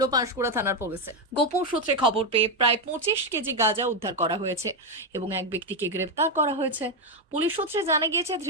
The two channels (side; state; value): both; normal; correlation 0.05